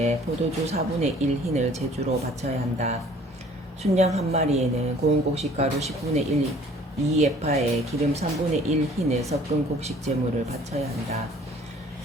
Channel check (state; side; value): normal; both; correlation 0.53